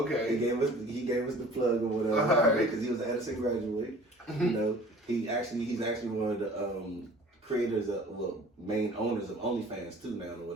okay. He gave us the plug or whatever because he was an Edison graduate. You know. He's actually one of the creators main owners of OnlyFans too now or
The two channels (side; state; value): both; normal; correlation 0.47